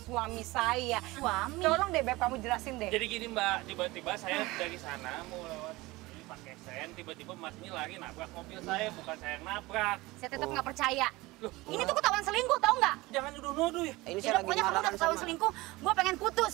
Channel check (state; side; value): quieter; left; 20.9 dB